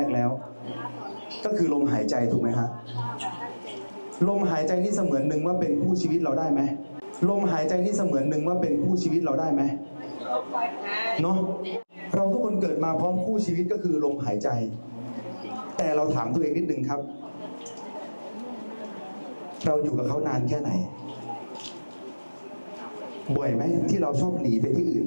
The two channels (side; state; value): both; inverted; correlation -1.00